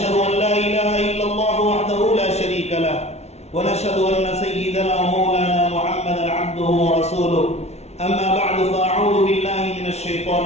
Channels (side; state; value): right; late; 0.31 ms